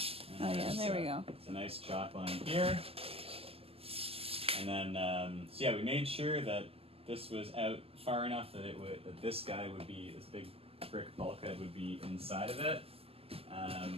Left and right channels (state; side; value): late; left; 0.28 ms